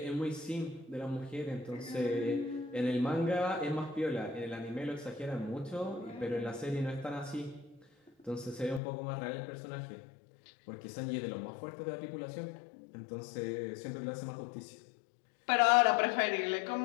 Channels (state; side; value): drops out; right; at 8.8 s